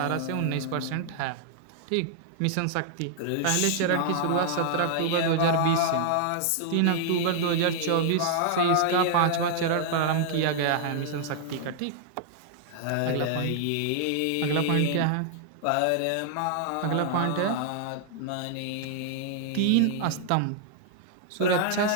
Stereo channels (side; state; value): both; different; correlation -0.01